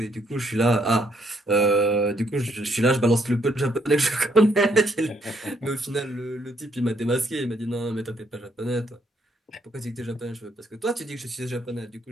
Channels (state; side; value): normal; both; correlation 0.71